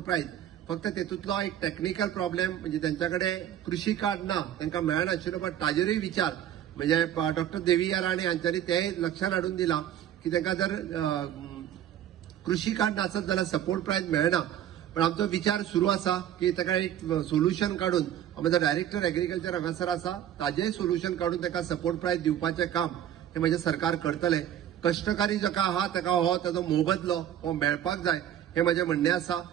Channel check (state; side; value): quieter; left; 10.8 dB